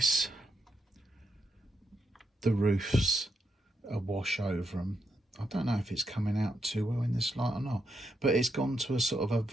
the roofs a wash over them. I don't know if it's coming out too well in this light or not, but it's gone to a sort of a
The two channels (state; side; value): normal; both; correlation 0.82